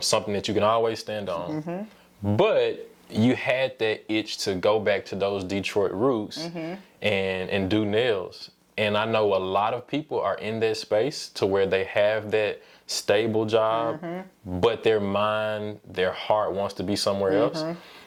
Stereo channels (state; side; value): identical; both; correlation 1.00